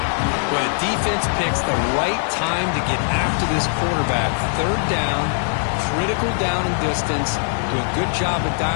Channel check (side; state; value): right; silent; 65 dB below the other